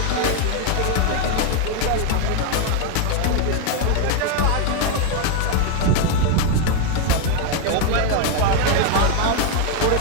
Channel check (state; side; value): different; both; correlation 0.01